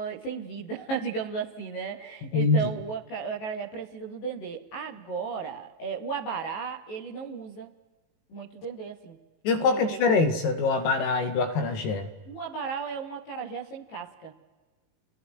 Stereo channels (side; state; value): right; late; 19 ms